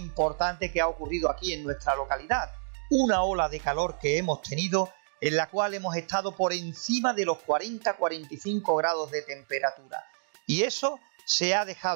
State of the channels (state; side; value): silent; left; digital silence